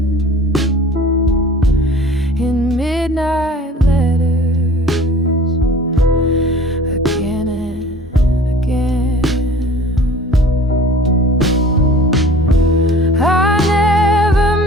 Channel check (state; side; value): normal; both; correlation 0.46